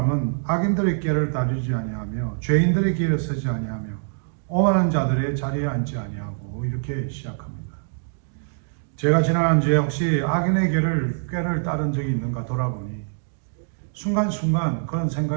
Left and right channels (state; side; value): silent; left; digital silence